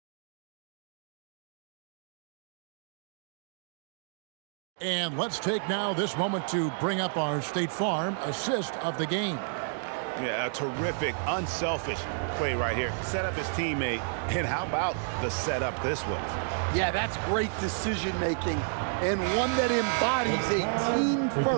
And let's take now this moment to bring up our State Farm assist of the game. Yeah, a terrific, unselfish play right here. Set up his teammate, and how about the setup this was? Yeah, that's great decision-making and one that embodies a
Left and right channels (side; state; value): left; silent; digital silence